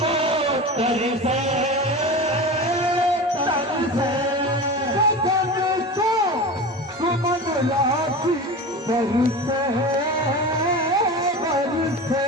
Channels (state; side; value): normal; both; correlation 0.30